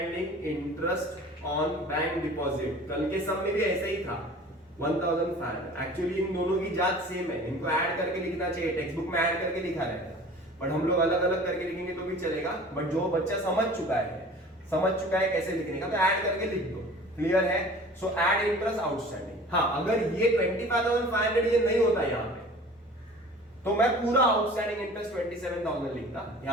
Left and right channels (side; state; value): both; normal; correlation 0.44